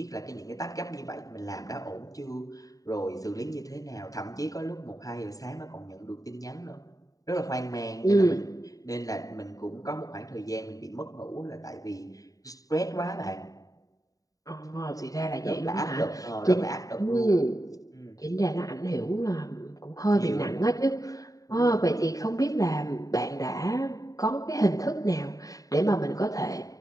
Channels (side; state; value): right; late; 0.17 ms